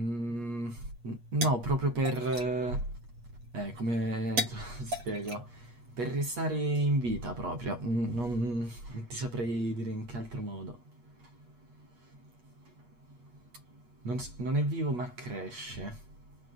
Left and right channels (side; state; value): left; late; 8.4 ms